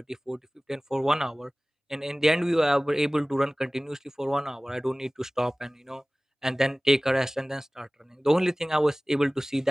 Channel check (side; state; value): both; normal; correlation 0.98